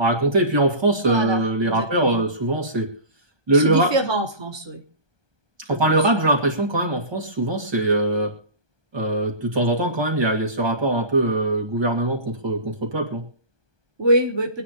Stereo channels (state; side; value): late; left; 1.2 ms